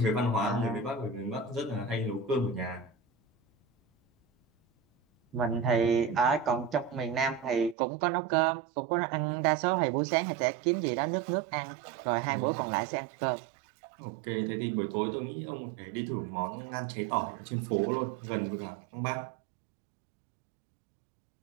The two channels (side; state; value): left; drops out; at 7.8 s